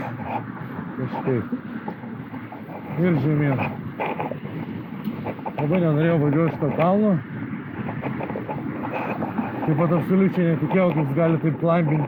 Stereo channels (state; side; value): identical; both; correlation 1.00